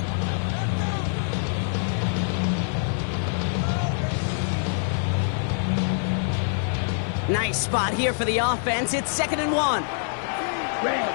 Nice spot here for the offense. It's 2nd and 1. Red,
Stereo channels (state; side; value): silent; right; digital silence